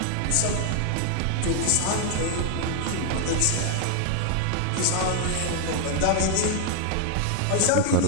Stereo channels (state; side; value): different; both; correlation 0.01